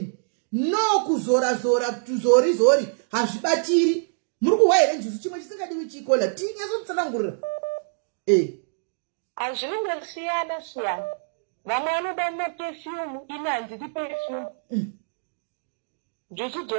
no kuzora tuzorizori hazvibatiri muri kuhwa here njuzu chimwe chisingadiwi chikola tinyasotsanangurira hazvinenge siyana vamwe vanoda maperfume ine handidi perfume njuzu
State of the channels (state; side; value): silent; left; digital silence